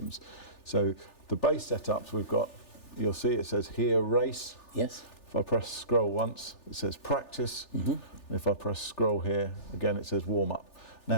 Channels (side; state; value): right; late; 3.4 ms